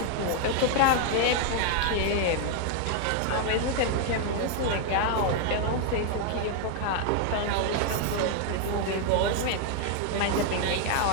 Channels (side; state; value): both; different; correlation 0.00